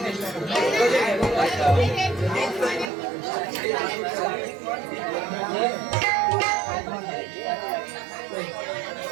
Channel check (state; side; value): drops out; left; at 2.9 s